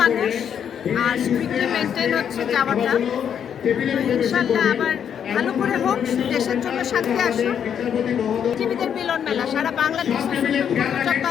মানুষ, আর স্ট্রিক্টলি মেনটেন হচ্ছে যাওয়াটা। ইনশাল্লাহ আবার ভালো করে হোক, দেশের জন্য শান্তি আসুক। আইনজীবীদের মিলন মেলা, সারা বাংলাদেশ যত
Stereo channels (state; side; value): quieter; right; 8.4 dB